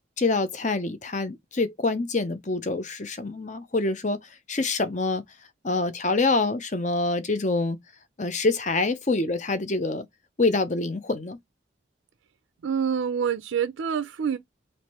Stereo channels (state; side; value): normal; both; correlation 0.15